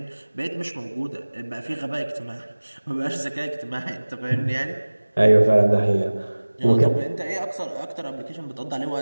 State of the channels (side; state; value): both; inverted; correlation -1.00